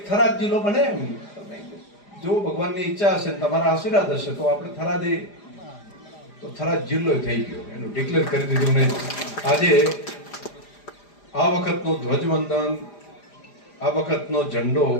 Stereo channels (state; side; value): late; right; 4.9 ms